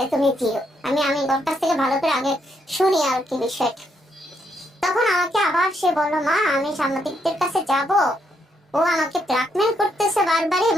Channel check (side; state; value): both; normal; correlation 0.76